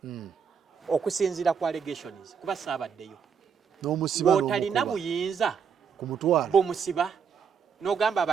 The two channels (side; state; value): left; quieter; 6.7 dB